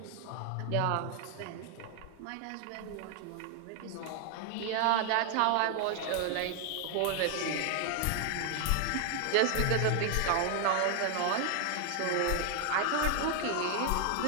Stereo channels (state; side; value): different; both; correlation 0.00